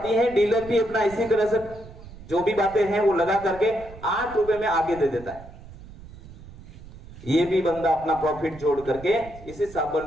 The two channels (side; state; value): right; noise; rumble, 17 dB below the sound